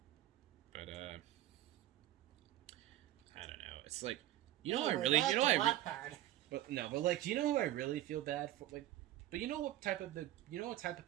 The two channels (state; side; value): quieter; left; 14.0 dB